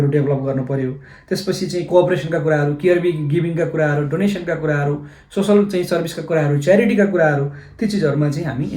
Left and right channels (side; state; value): both; identical; correlation 1.00